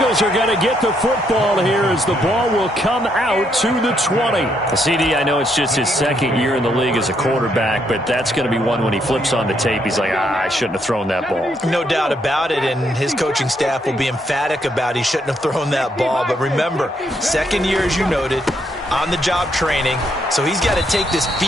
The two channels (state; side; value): normal; both; correlation 0.74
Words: are going to get the football here as the ball will come out to the 20. CD, I know it's just his second year in the league as a quarterback, but that's going to be one when he flips on the tape. He's like, I shouldn't have thrown that ball. No doubt about it, and his coaching staff will be emphatic about he shouldn't have thrown that ball. But remember, second year, as you noted, on-the-job training, so he's got to take this